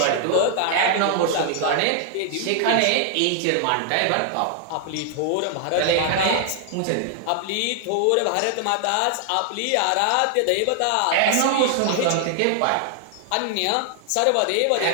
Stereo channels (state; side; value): different; both; correlation 0.00